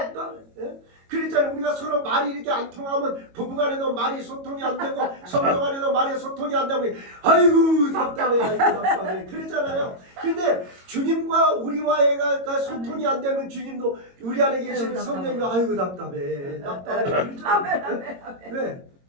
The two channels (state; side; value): late; left; 22 ms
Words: 그랬잖아요. 우리가 서로 말이 이렇게 안 통하면 부부간에도 말이 소통이 안 되고 성도간에도 말이 소통이 안 되고 아이고 답답해 아이고 답답해 그랬잖아요. 근데 주님과 우리와의 소통이 안 되면 주님도 우리 안에 계시는 성령님이 아이고 답답해 그러잖아요. 왜?